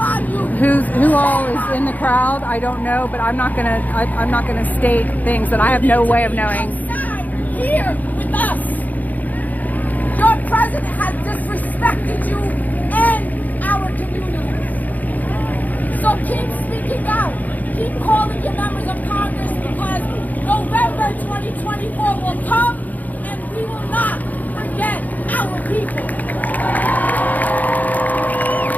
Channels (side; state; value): right; late; 0.080 ms